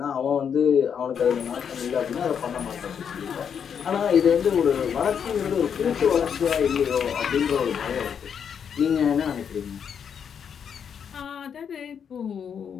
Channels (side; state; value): right; quieter; 7.5 dB